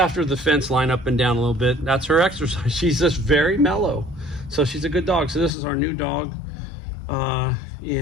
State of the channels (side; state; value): right; drops out; at 5.5 s